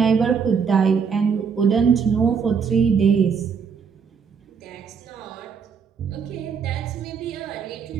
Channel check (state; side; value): quieter; left; 6.2 dB